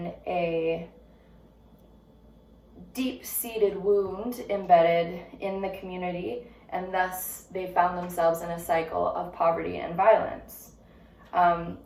a deep-seated wound embedded in the community, and thus they found themselves in a cycle of poverty and violence.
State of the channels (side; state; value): both; identical; correlation 1.00